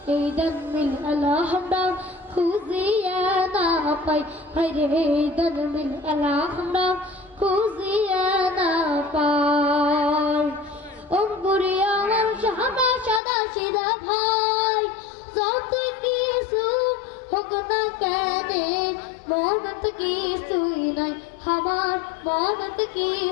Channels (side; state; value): right; drops out; at 13.2 s